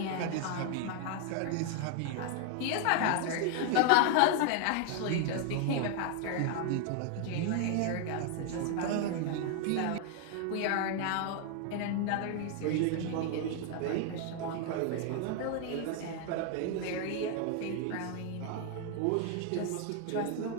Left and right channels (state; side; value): different; both; correlation 0.00